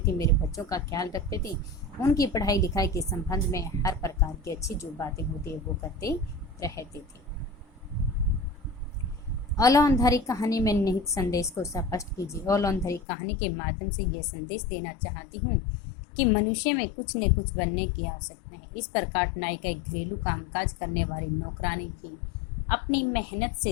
थे, मेरे बच्चों का ख्याल रखते थे। उनकी पढ़ाई लिखाई के संबंध में हर प्रकार की अच्छी जो बातें होती है वो करते रहते थे। औलांधारी कहानी में निहित संदेश को स्पष्ट कीजिए। औलांधारी कहानी के माध्यम से यह संदेश देना चाहती हूँ कि मनुष्य में कुछ न कुछ बनने की आवश्यकता है। इस प्रकार नायिका एक घरेलू कामकाज करने वाली नौकरानी भी अपनी मेहनत से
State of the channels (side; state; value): right; drops out; at 13.0 s